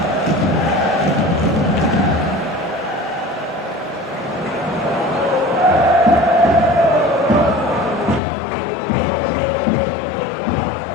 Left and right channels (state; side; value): drops out; right; at 8.2 s